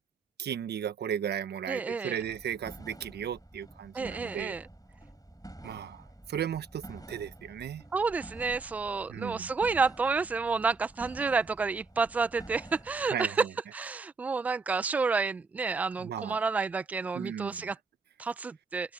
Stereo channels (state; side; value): quieter; left; 4.7 dB